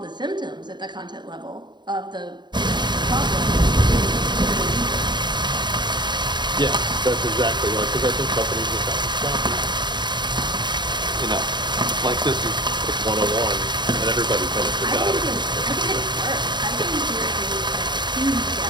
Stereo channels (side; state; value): left; late; 0.21 ms